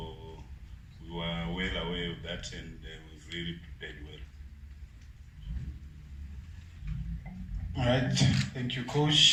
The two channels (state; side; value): identical; both; correlation 1.00